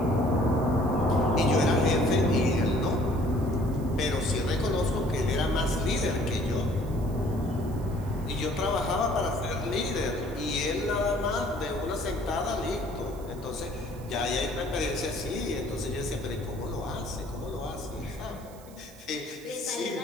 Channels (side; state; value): right; noise; hiss, 23 dB below the sound